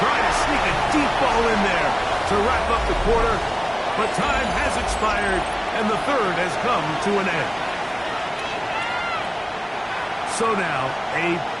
try to sneak a deep ball in there to wrap up the quarter. But time has expired, and the 3rd has come to an end. So now, a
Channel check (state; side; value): identical; both; correlation 1.00